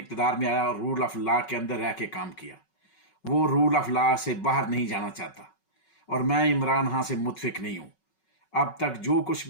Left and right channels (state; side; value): late; right; 5.4 ms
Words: में आया और रूल ऑफ लॉ के अंदर रह के काम किया। वो रूल ऑफ लॉ से बाहर नहीं जाना चाहता और मैं इमरान खां से मुतफिक नहीं हूँ। अब तक जो कुछ